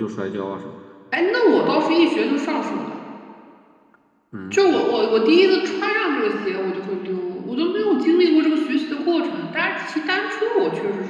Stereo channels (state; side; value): identical; both; correlation 1.00